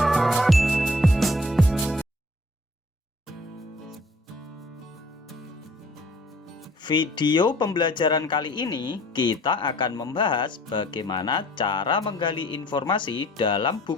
Video pembelajaran kali ini kita akan membahas bagaimana cara menggali informasi dalam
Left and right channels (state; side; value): normal; both; correlation 0.55